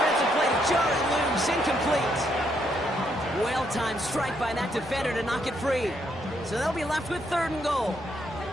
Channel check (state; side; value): normal; both; correlation 0.74